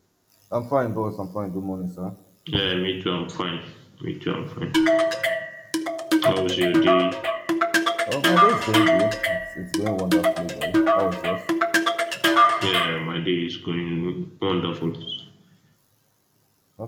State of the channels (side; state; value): both; identical; correlation 1.00